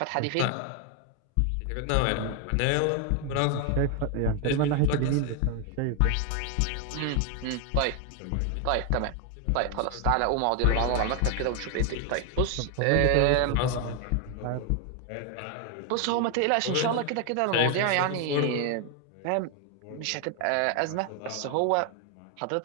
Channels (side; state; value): both; different; correlation 0.01